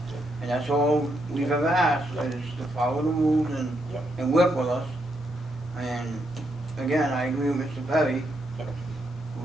and that's all we've ever asked, is to follow the rules and work with us. And again, I agree with Mr. Perry,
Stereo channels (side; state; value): both; normal; correlation 0.79